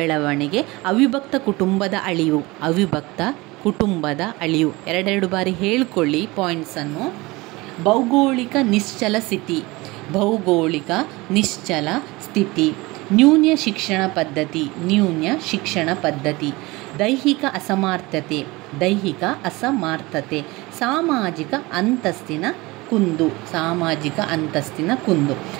ಅವಿಭಕ್ತ ಕುಟುಂಬದ ಅಳಿವು, ಅವಿಭಕ್ತ ಕುಟುಂಬದ ಅಳಿವು. 2 ಬಾರಿ ಹೇಳ್ಕೊಳ್ಳಿ ಪಾಯಿಂಟ್ಸನ್ನು. ಭೌಗೋಳಿಕ ನಿಶ್ಚಲ ಸ್ಥಿತಿ, ಭೌಗೋಳಿಕ ನಿಶ್ಚಲ ಸ್ಥಿತಿ. ನ್ಯೂನ್ಯ ಶಿಕ್ಷಣ ಪದ್ಧತಿ, ನ್ಯೂನ್ಯ ಶಿಕ್ಷಣ ಪದ್ಧತಿ. ದೈಹಿಕ ಅಸಮರ್ಥತೆ, ದೈಹಿಕ ಅಸಮರ್ಥತೆ. ಸಾಮಾಜಿಕ ಅಂತಸ್ತಿನ ಕುಂದು, ಸಾಮಾಜಿಕ ಅಂತಸ್ತಿನ ಕುಂದು.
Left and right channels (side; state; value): left; quieter; 22.3 dB